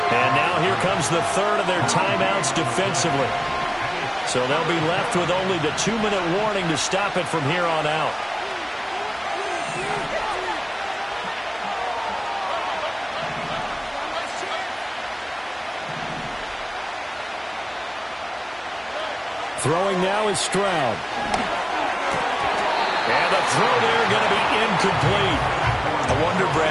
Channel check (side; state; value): both; identical; correlation 1.00